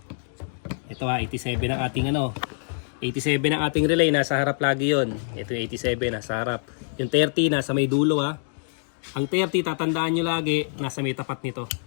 Ito ha, 87 ang ating 87 ang ating relay, nasa harap lagi yon. Ito yung 87, nasa harap. Yung 30, nasa may dulo ha. Ang 30, tatandaan nyo lagi, nasa may tapat nito.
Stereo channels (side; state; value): right; silent; digital silence